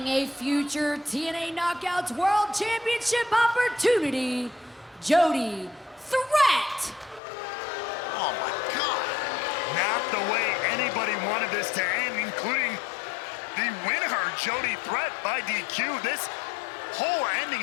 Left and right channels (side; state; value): right; drops out; at 7.2 s